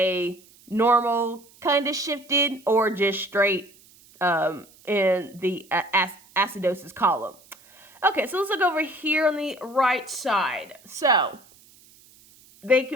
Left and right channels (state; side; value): noise; right; hiss, 27 dB below the sound